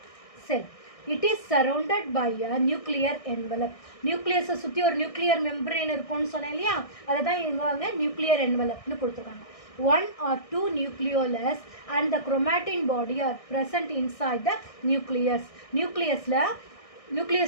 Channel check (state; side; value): late; right; 1.6 ms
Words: It is surrounded by a nuclear envelope. நியூக்ளியஸை சுற்றி ஒரு நியூக்ளியர் மெம்பரேன் இருக்கும்னு சொன்னேன் இல்லையா, அதை தான் இவங்க நியூக்ளியர் என்வலப்னு கொடுத்துருக்காங்க. 1 or 2 nucleolus and the chromatin body are present inside the nucleus.